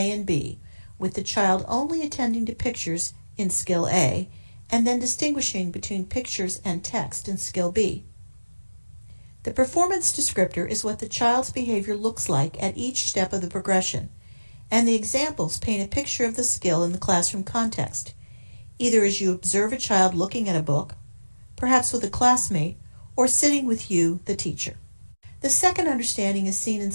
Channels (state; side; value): inverted; both; correlation -1.00